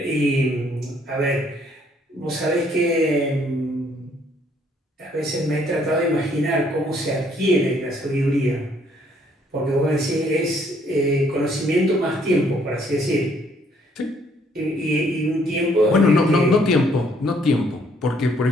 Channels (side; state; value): both; normal; correlation 0.65